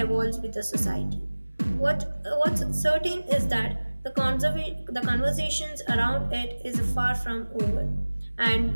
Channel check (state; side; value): inverted; both; correlation -1.00